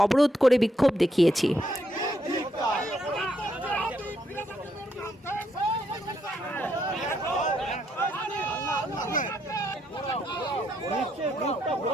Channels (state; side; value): normal; both; correlation 0.76